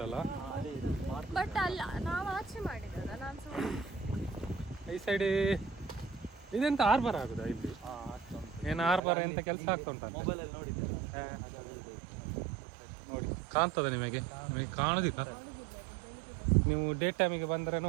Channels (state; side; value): drops out; left; at 9.0 s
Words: ಬಟ್ ಅಲ್ಲ, ನಾವು ಆಚೆ ಮಾಡಿದ್ರಲ್ಲ. ನಾನು ಈ ಸೈಡ್ ಇದೆಂತ ಆರ್ಬರ್ ಆಗುದಾ ಇಲ್ಲಿ? ಏನು ಆರ್ಬರ್ ಎಂತ ಕೆಲಸ ಆಗ್ತಾ ಉಂಟಂತ ನೋಡಿ. ಕಾಣ್ತದ ನಿಮಗೆ ಕಾಣುದಿಲ್ಲ? ನೀವು ಡೇ ಟೈಮಿಗೆ ಬಂದರೆ